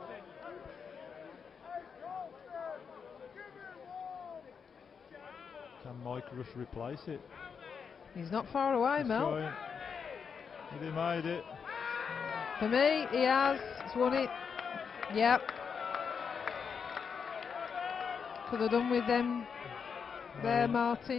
Can Mike Rush replace it? He's not far away, He's Mel. trying. Has he made it? For me, he has. He's won it. Yep. Could have done with them there,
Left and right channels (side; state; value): right; quieter; 6.3 dB